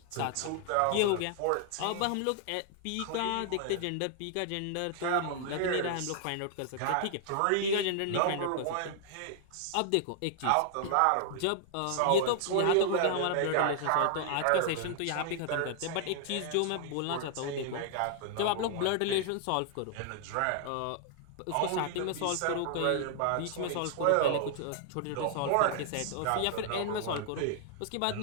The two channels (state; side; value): different; both; correlation -0.01